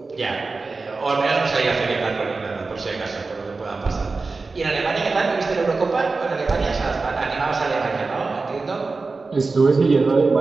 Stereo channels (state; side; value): quieter; left; 3.9 dB